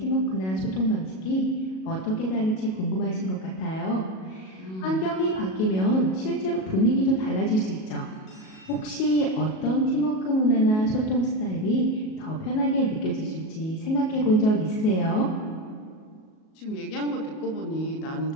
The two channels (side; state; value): right; late; 37 ms